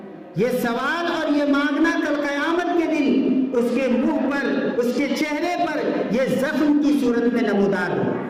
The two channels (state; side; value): identical; both; correlation 1.00